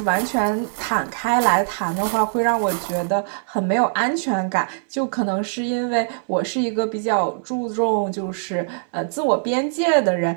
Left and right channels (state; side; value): silent; left; 64 dB below the other